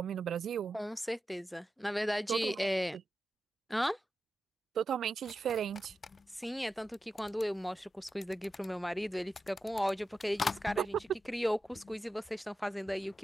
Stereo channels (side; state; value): both; normal; correlation 0.91